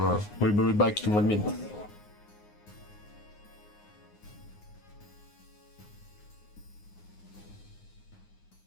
we'll be back in 1 minute.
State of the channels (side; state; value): right; late; 9.6 ms